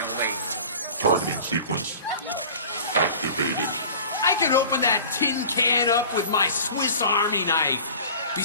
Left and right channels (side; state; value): both; inverted; correlation -0.41